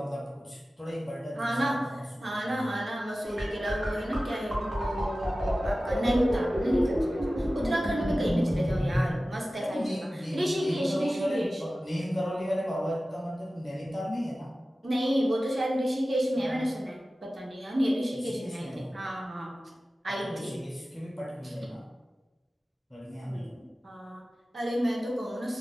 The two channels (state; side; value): normal; both; correlation 0.96